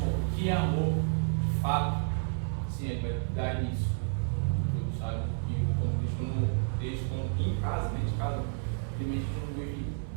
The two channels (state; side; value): silent; left; 57 dB below the other